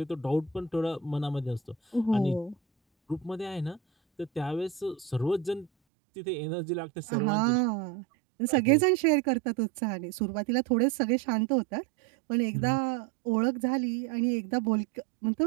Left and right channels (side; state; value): left; drops out; at 5.7 s